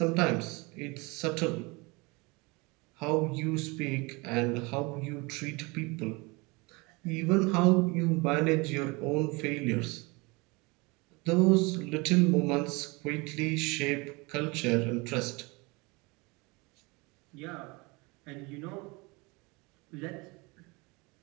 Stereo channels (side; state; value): left; quieter; 26.4 dB